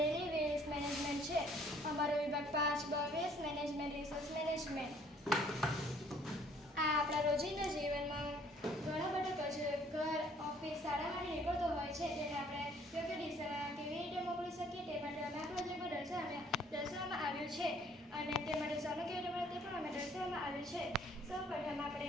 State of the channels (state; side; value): normal; both; correlation 0.60